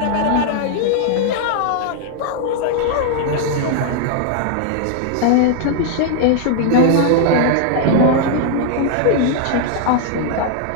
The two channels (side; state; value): both; different; correlation 0.00